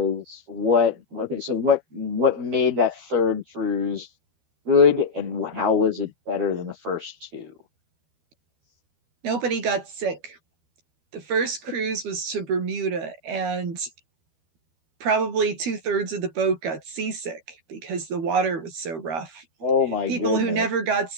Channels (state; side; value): late; left; 12 ms